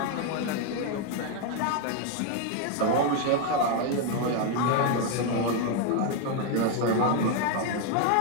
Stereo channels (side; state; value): both; different; correlation 0.01